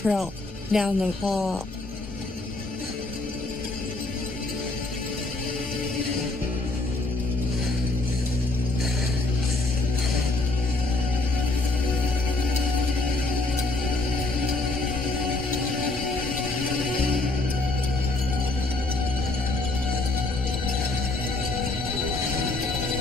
down the hall.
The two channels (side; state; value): right; quieter; 3.0 dB